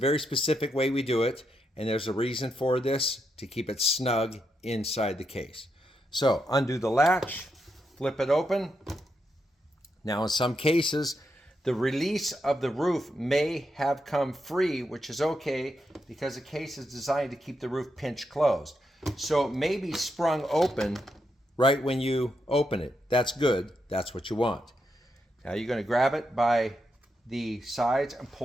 specific way we do it, and there's a reason for this, to keep it snug inside the case. So undo the latch, flip it open. Now in some cases, the release of the roof may have come free, which is okay because the case is designed to keep the roof pinch closed. So it may be sprung open right when you open it. That's good. That's what you want. Now you're going to grab it by the sides and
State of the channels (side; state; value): both; normal; correlation 0.83